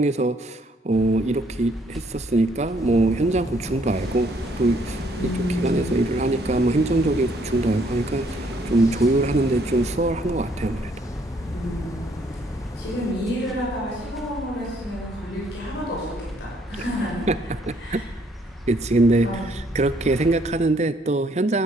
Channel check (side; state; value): both; normal; correlation 0.67